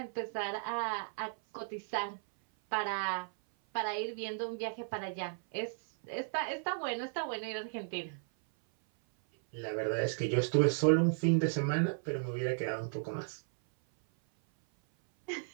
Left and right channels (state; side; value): silent; left; 55 dB below the other